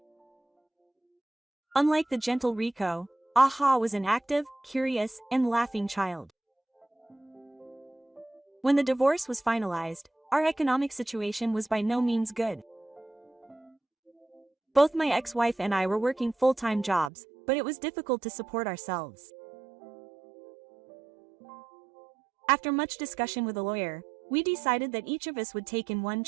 Unlike the gentle Riko, Aha was an active, curious, and laughing child. When the divorce was finalized, our economic situation was by no means good. Both my ex-wife and I were working full-time jobs, but it was difficult to support ourselves. After much discussion with a lawyer, we decided that each of us would take in one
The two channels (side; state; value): left; drops out; at 17.1 s